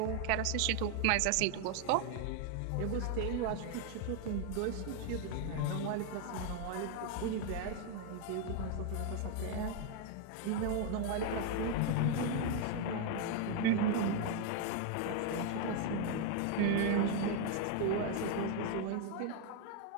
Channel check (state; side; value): different; both; correlation 0.01